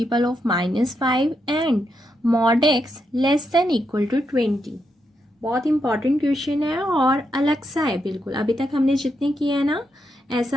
of -5 and mod x less than equal to 20। बहुत इंपॉर्टेंट क्वेश्चन है और अलग सा है बिल्कुल। अभी तक हमने जितने किए हैं ना,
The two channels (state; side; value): normal; both; correlation 0.82